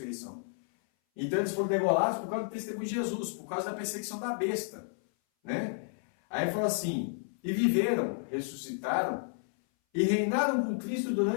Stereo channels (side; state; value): right; silent; 57 dB below the other